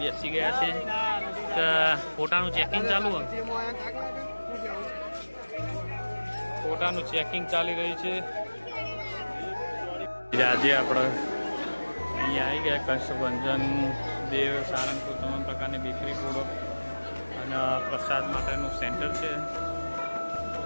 બેસી ગયા છે. ફોટાનું ચેકિંગ ચાલુ હોય. ફોટાનું ચેકિંગ ચાલી રહ્યું છે. આજે આપણે અહીંયા આવી ગયા. કષ્ટભંજન દેવ સારંગપુર તમામ પ્રકારની બેકરી ફૂડો અને પ્રસાદ માટેનું સેન્ટર છે. તો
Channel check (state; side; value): inverted; both; correlation -1.00